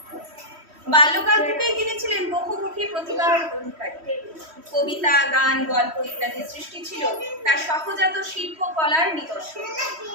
বাল্যকাল থেকেই তিনি ছিলেন বহুমুখী প্রতিভার অধিকারী। কবিতা, গান, গল্প ইত্যাদি সৃষ্টি ছিল তার সহজাত শিল্পকলার নিদর্শন।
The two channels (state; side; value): late; left; 3.1 ms